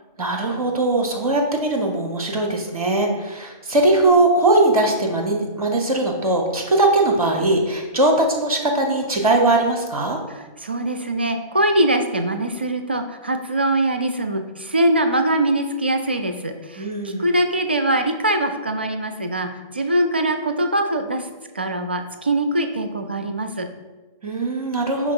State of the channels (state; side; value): inverted; both; correlation -0.36